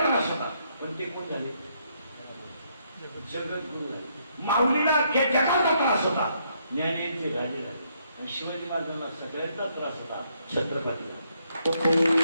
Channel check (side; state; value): both; inverted; correlation -0.73